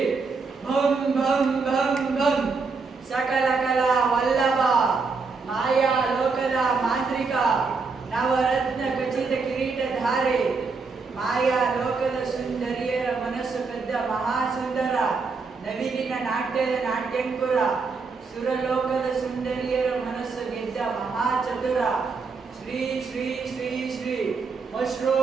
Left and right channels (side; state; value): left; quieter; 4.6 dB